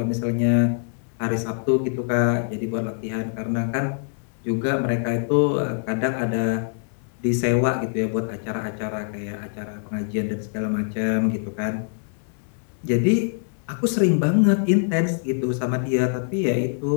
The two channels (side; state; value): right; silent; 63 dB below the other